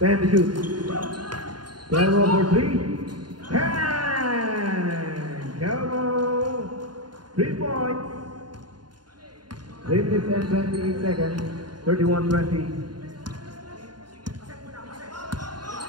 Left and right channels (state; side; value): late; left; 0.70 ms